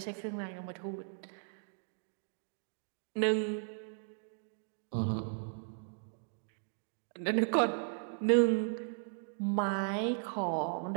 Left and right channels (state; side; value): silent; left; digital silence